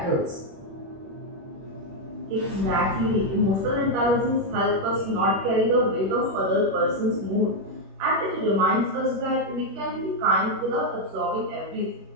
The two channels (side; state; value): left; late; 21 ms